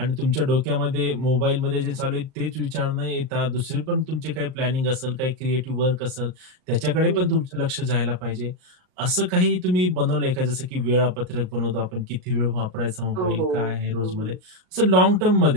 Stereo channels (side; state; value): left; late; 38 ms